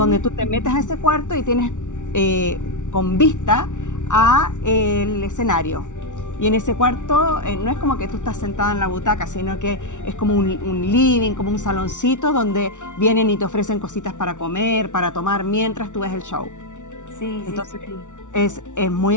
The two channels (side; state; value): right; late; 0.86 ms